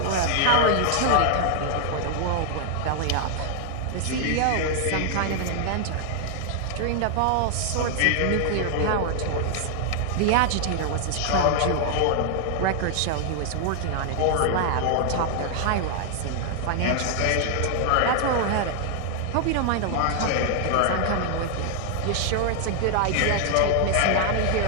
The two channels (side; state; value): both; different; correlation 0.00